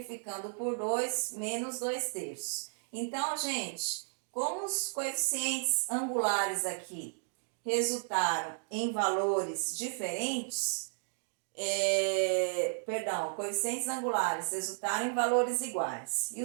por 2, menos 2/3. Então, gente, como os coeficientes angulares aqui resultaram em valores diferentes, coeficientes angulares resultaram em valores iguais e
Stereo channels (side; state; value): left; silent; digital silence